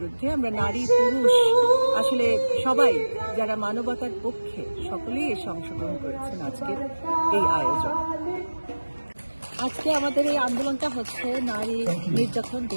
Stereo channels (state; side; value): inverted; both; correlation -1.00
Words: আমরা নারী পুরুষ আসলে সবাই যারা মানবতার পক্ষে সকলেই এসে অংশগ্রহণ করেছেন আজকের এই আয়োজন। আজকে আমাদের এই আন্দোলনটা হচ্ছে নারী নির্যাতন